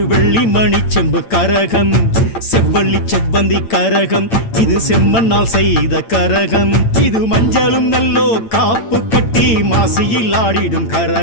வெள்ளி மணி செம்பு கரகம் செவ்வள்ளி செவ்வந்தி கரகம் இது செம்மண்ணால் செய்த கரகம் இது மஞ்சளும் நல்லோ காப்பு கட்டி மாசியில் ஆடிடும்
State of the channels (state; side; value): late; right; 8.9 ms